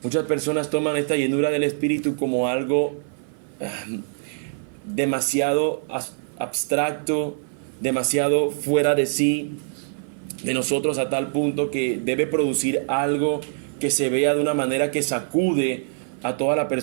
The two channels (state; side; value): silent; left; 55 dB below the other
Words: Muchas personas toman esta llenura del Espíritu como algo demasiado abstracto, demasiado fuera de sí, de nosotros, a tal punto que debe producir algo que se vea de una manera que sacude a toda la